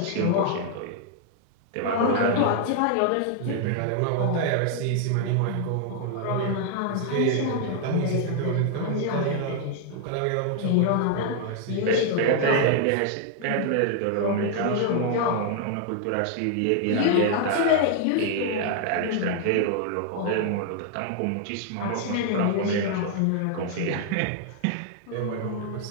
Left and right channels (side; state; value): both; different; correlation 0.00